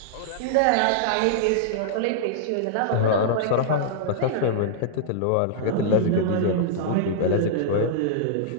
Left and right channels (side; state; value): both; different; correlation -0.02